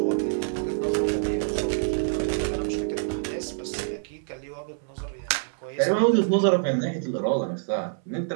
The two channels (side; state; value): left; silent; 61 dB below the other